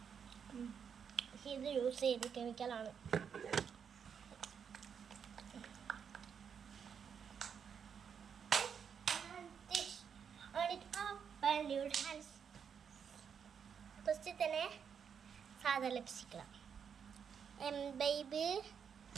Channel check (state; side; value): quieter; left; 7.2 dB